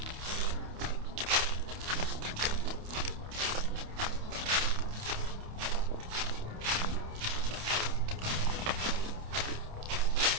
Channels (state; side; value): late; left; 28 ms